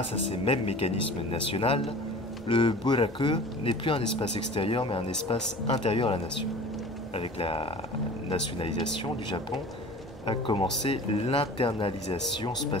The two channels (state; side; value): noise; right; hum, 24 dB below the sound